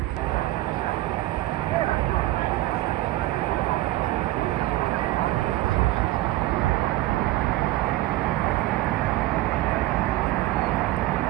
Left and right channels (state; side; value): quieter; left; 16.9 dB